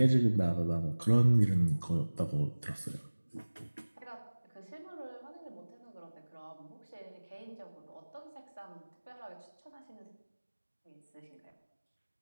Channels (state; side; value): inverted; both; correlation -1.00